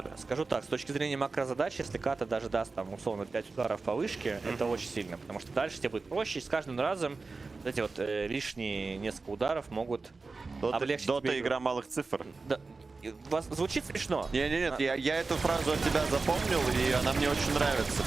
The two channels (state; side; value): quieter; left; 4.0 dB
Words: Скажу так, с точки зрения макрозадач, если ката даже даст там условно 5 ударов по вышке, это очень сильно, потому что дальше тебе будет проще, и с каждым разом вот эти вот лишние несколько ударов могут облегчить Дота тебе игра малых цифр. Да. Звучит смешно. Нет, я эту фразу от тебя запомнил, и она мне очень нравится,